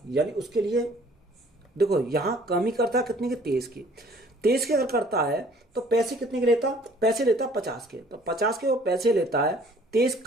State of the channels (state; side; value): normal; both; correlation 0.55